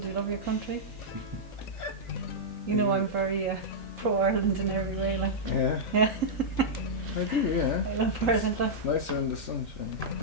you love your country? You know I'm very pro-Ireland in every way, like. Yeah. Yeah. I do, yeah. I love Ireland, like. Nicer in the sunshine.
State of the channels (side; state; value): both; normal; correlation -0.09